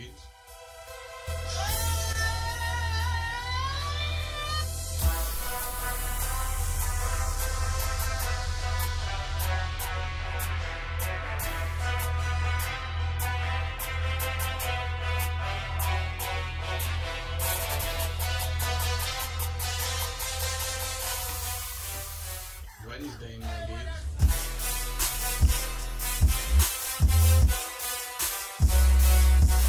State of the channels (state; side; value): identical; both; correlation 1.00